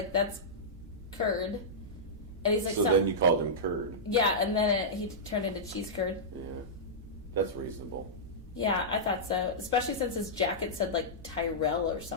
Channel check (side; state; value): both; normal; correlation -0.12